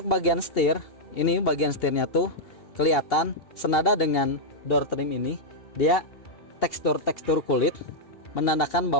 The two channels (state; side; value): late; right; 2.7 ms